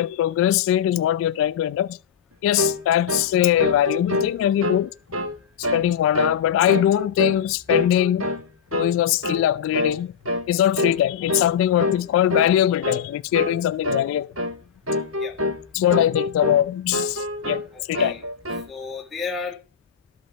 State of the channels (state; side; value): quieter; right; 8.1 dB